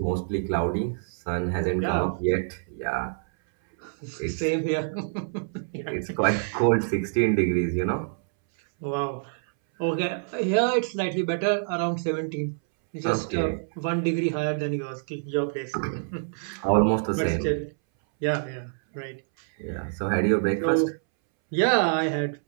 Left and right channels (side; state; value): left; silent; 61 dB below the other